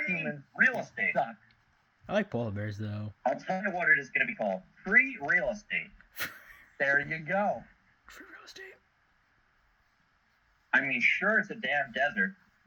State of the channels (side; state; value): both; identical; correlation 1.00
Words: humans. Real estate. Suck. I like polar bears, though. I'll tell you what it is going to be called. Free real estate. There you go. Free real estate. I mean, sure, it's a damn desert,